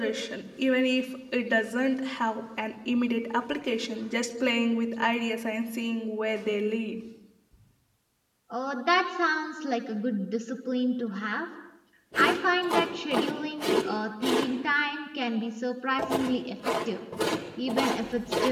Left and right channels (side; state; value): both; identical; correlation 1.00